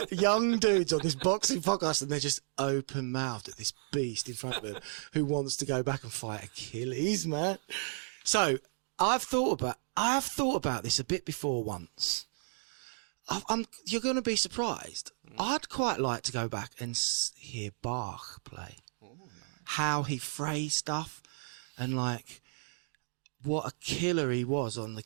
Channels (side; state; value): left; silent; digital silence